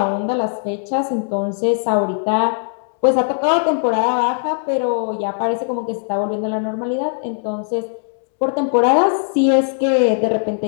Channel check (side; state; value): right; silent; 67 dB below the other